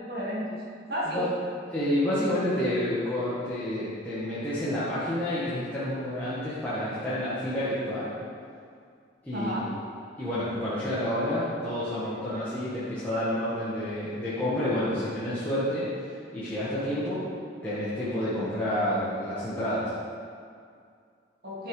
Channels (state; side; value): normal; both; correlation 0.37